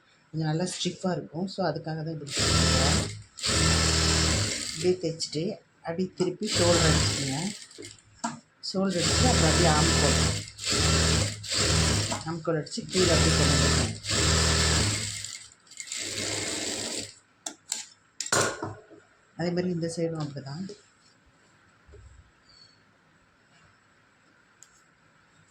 கொஞ்சம் நல்லா ஸ்டிஃபாக இருக்கும். ஸோ அதுக்காக தான் இப்படி தைக்கிறேன். இப்படியே தைச்சிட்டு அப்படியே திருப்பி ஷோல்டர் அடிச்சுக்கோங்க. ஷோல்டர் அடிச்சுட்டு அப்புறம் அப்படியே ஆம்கோல் அடித்து கீழே அப்படி கொண்டு வந்துருக்கேன். அதே மாதிரி இந்த சைடும் அப்படி தான்.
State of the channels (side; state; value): both; identical; correlation 1.00